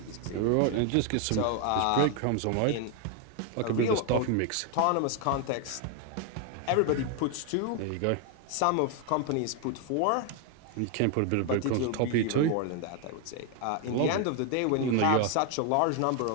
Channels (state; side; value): different; both; correlation 0.01